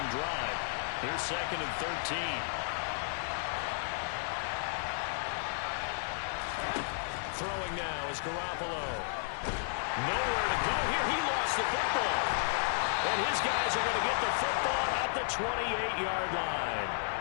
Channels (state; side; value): silent; right; 56 dB below the other